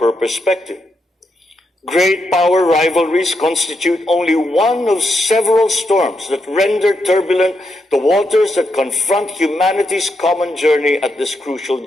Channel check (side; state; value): both; normal; correlation 0.82